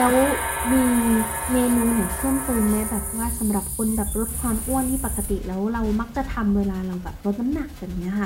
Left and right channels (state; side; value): identical; both; correlation 1.00